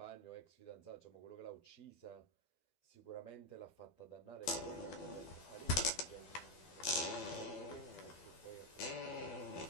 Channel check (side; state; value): right; late; 12 ms